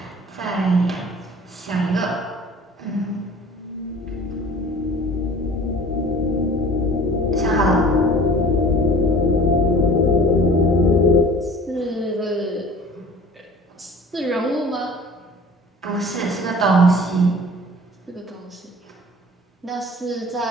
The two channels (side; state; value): both; normal; correlation 0.46